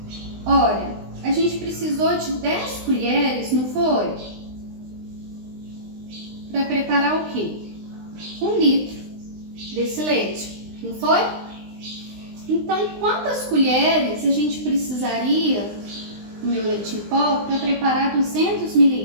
Olha, a gente precisou de 10 colheres, não foi? Para preparar o quê? 1 litro. desse leite, não foi? Então, quantas colheres a gente precisaria do meu leite em pó para preparar 200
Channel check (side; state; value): left; late; 20 ms